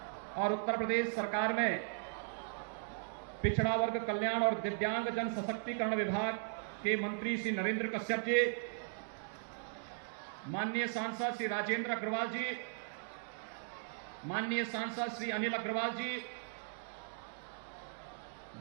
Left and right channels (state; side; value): silent; left; digital silence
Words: और उत्तर प्रदेश सरकार में पिछड़ा वर्ग कल्याण और दिव्यांग जन सशक्तिकरण विभाग के मंत्री श्री नरेंद्र कश्यप जी, माननीय सांसद श्री राजेंद्र अग्रवाल जी, माननीय सांसद श्री अनिल अग्रवाल जी,